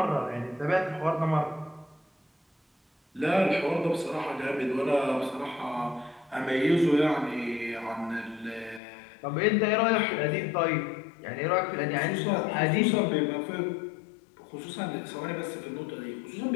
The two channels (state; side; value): drops out; right; at 8.8 s